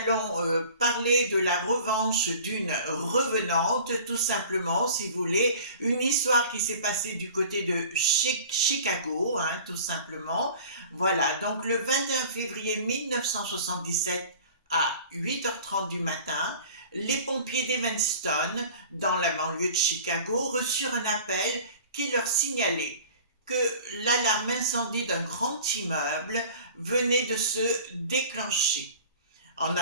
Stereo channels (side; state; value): both; inverted; correlation -0.44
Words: parler de la revanche d'une revenante, tout simplement, si vous voulez. Une histoire qui s'est passée du côté de Chicago, tout simplement. Voilà, donc le 21 février 1977 à 8h30 du matin, les pompiers d'Evanston, dans la banlieue de Chicago, reçurent un appel qui leur signalait que l'alarme incendie d'un grand immeuble venait de se déclencher. En